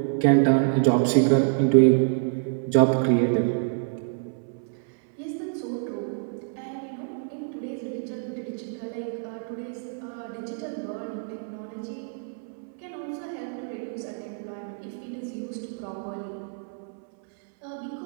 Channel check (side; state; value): left; silent; 60 dB below the other